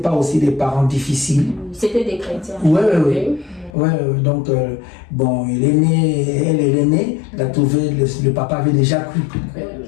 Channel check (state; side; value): drops out; right; at 3.7 s